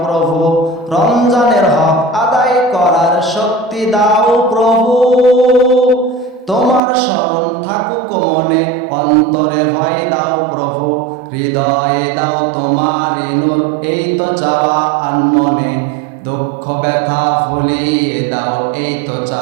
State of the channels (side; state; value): left; drops out; at 6.8 s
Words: প্রভু। রমজানের হক আদায় করার শক্তি দাও প্রভু, তোমার শরণ থাকুক মনে অন্তরে ভয় দাও প্রভু। হৃদয়ে দাও তোমার নূর এই তো চাওয়া আনমনে, দুঃখ ব্যথা ভুলিয়ে দাও এই তো